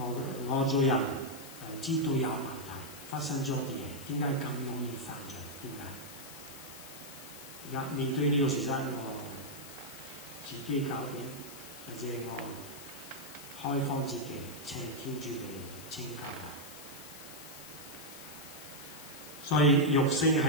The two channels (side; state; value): left; noise; hiss, 14 dB below the sound